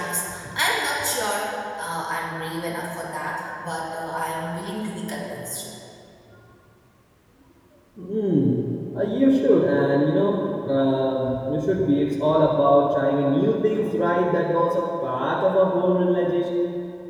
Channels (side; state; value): both; identical; correlation 1.00